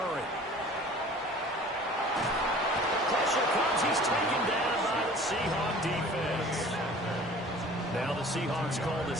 Pressure comes. He's taken down by the Seahawk defense. Now the Seahawks call the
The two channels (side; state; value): both; normal; correlation 0.46